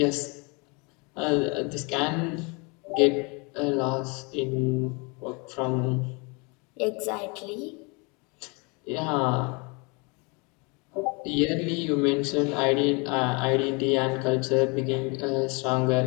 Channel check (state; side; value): quieter; right; 30.3 dB